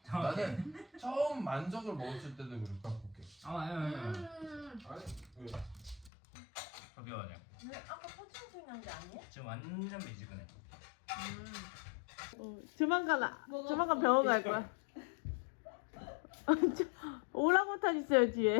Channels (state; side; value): drops out; right; at 6.1 s